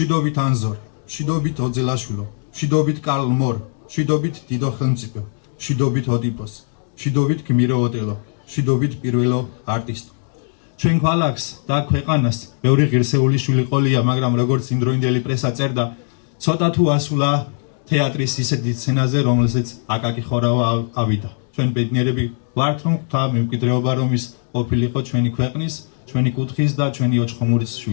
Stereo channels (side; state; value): right; silent; 65 dB below the other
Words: ანზორ, მშვიდობით ოძელაშვილო, მშვიდობით კარლ მორ, მშვიდობით დიდო ხელმწიფო, მშვიდობით ოდიპოს, მშვიდობით გმირო ოტელო, მშვიდობით პირველო არტისტო. ჩვენ ქალაქს და ქვეყანას ბევრი ღირსეული შვილი ყოლია, მაგრამ როგორც იმდროინდელი პრესა წერდა, ცოტა თუ ასულა თეატრის ისეთი სცენაზე, რომელზეც აკაკი ხორავა ავიდა. ჩვენ ბედნიერები ვართ, რომ გვთა მემკვიდრეობა, რომ ის ყოფილიყო ჩვენი ქვეყნის, ჩვენი კუთხის და ჩვენი ოჩხომურის